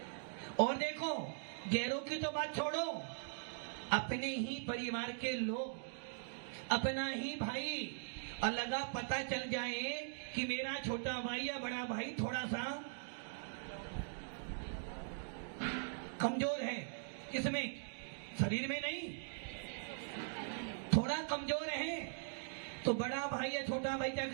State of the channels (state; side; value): silent; left; digital silence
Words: और देखो गैरों की तो बात छोड़ो, अपने ही परिवार के लोग, अपना ही भाई, और लगा पता चल जाए कि मेरा छोटा भाई या बड़ा भाई थोड़ा सा कमजोर है, किसमें, शरीर में नहीं, थोड़ा कमजोर है, तो बड़ा भाई या छोटा भाई क्या